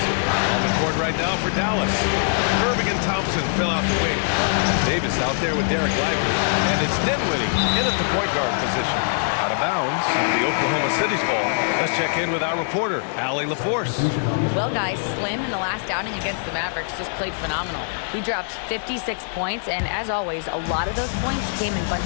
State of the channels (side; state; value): right; silent; digital silence